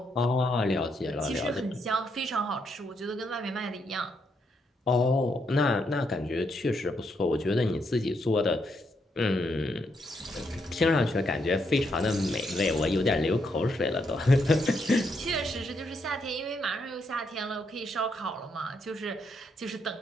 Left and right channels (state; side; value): normal; both; correlation 0.77